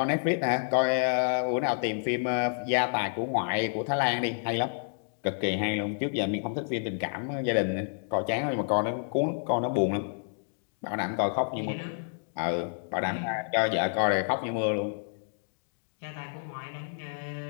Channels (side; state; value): right; silent; digital silence